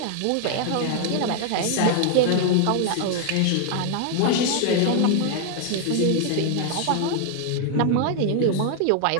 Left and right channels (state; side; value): different; both; correlation 0.00